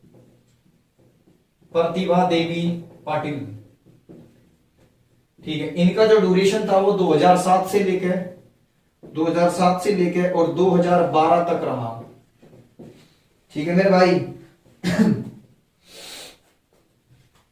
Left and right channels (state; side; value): identical; both; correlation 1.00